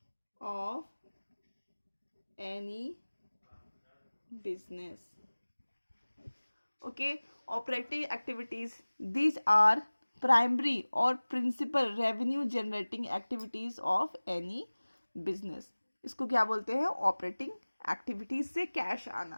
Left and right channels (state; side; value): inverted; both; correlation -1.00